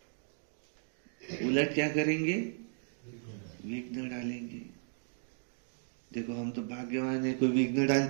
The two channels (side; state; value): left; silent; digital silence